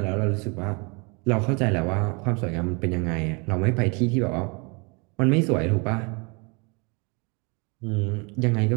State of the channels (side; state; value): left; quieter; 30.9 dB